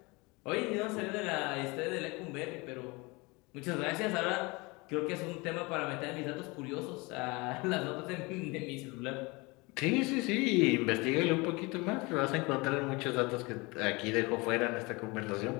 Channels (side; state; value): right; quieter; 25.6 dB